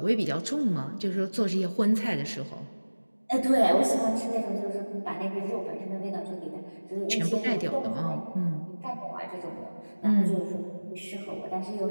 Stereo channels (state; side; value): inverted; both; correlation -1.00